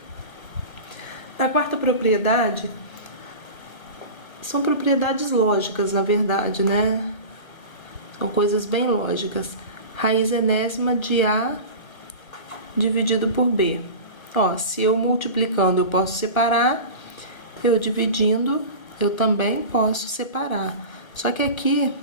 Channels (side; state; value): right; late; 1.2 ms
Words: Na quarta propriedade, são propriedades lógicas, na verdade, né? São coisas bem lógicas. Raiz enésima de A dividido por B. Ó, se eu multiplicando eu posso separar, eu dividindo eu também posso separar. Só que aqui